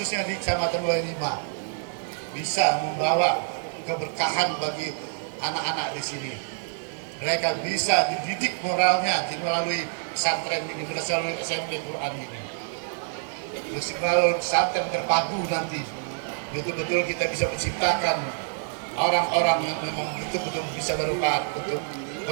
di Kecamatan 25, bisa membawa keberkahan bagi anak-anak di sini. Mereka bisa dididik moralnya melalui pesantren ini, melalui SMP Quran ini. Terus melalui pesantren terpadu nanti, betul-betul kita bisa menciptakan orang-orang yang memang betul-betul bisa bermanfaat untuk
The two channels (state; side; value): silent; left; digital silence